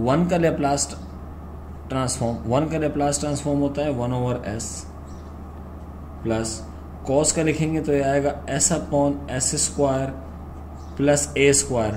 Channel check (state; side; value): identical; both; correlation 1.00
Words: 1 का लेप्लास ट्रांसफॉर्म, 1 का लेप्लास ट्रांसफॉर्म होता है 1/s प्लस कॉस का लिखेंगे तो ये आएगा s upon s square plus a square